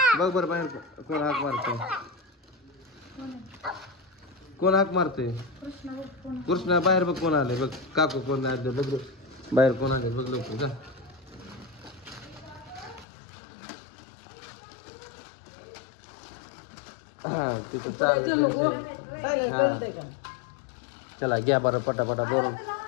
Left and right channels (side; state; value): right; drops out; at 13.1 s